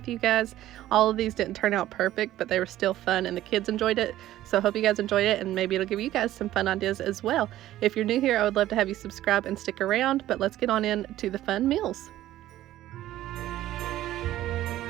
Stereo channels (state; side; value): quieter; left; 14.0 dB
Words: you guys. All of these didn't turn out perfect, but they were still fun and the kids enjoyed it, so I hope you guys enjoyed it and maybe it'll give you guys some fun ideas as well. If you're new here, I would love to have you subscribe and stick around, but let's get on into the fun meals.